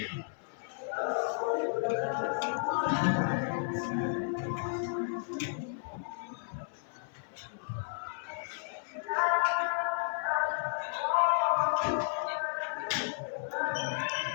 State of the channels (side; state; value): right; silent; digital silence